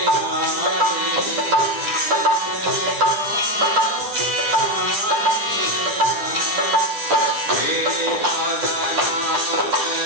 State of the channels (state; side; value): late; left; 10 ms